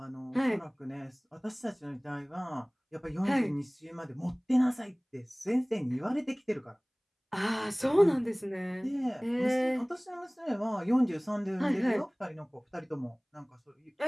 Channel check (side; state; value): both; identical; correlation 1.00